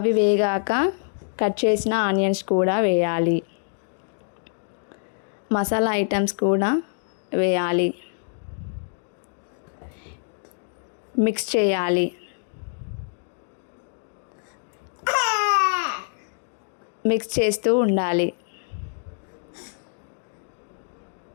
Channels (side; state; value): right; silent; digital silence